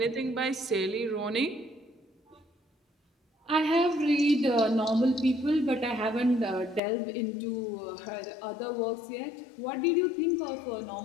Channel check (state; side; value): drops out; right; at 6.8 s